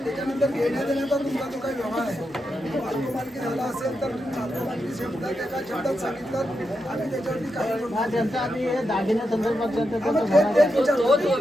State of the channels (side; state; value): both; normal; correlation 0.86